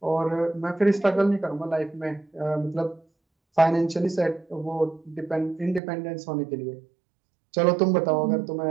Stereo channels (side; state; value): left; drops out; at 5.8 s